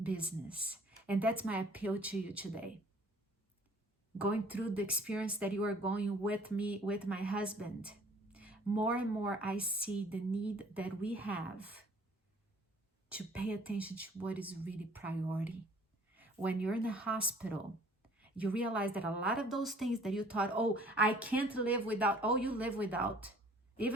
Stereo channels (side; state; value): both; normal; correlation 0.54